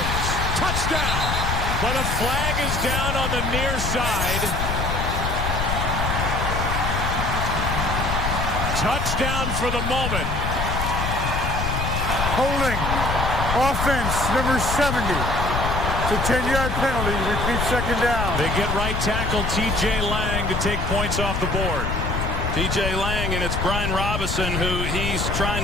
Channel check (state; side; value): noise; left; rumble, 1 dB below the sound